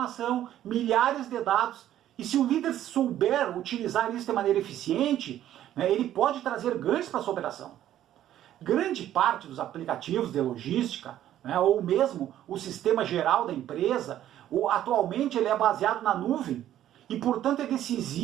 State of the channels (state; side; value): quieter; left; 12.1 dB